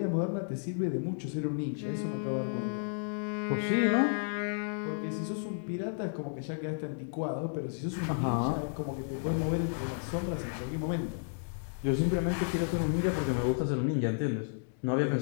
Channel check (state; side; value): silent; right; digital silence